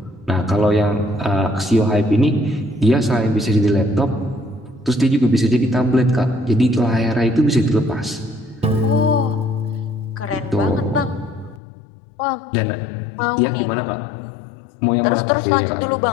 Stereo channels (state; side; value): drops out; right; at 11.6 s